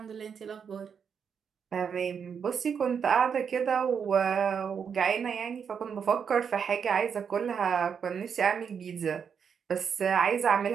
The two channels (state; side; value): quieter; left; 6.9 dB